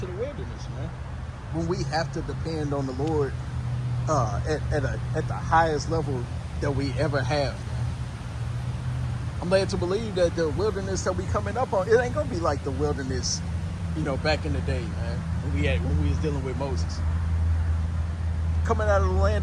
the wilderness, man. When we have to depend on the Lord at the highest level that we ever have. I'm led to believe that the wilderness that we coming up on, it ain't going to be like the wilderness back in the day, man, when we was dealing with Moses. Coming out of the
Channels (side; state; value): both; identical; correlation 1.00